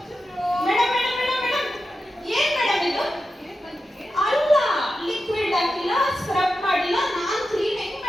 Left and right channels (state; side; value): normal; both; correlation 0.91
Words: Madam madam madam madam ಏನ್ madam ಇದು? ಅಲ್ಲ, liquid ಹಾಕಿಲ್ಲ, scrub ಮಾಡಿಲ್ಲ, ನಾನ್ clean ಹೆಂಗ್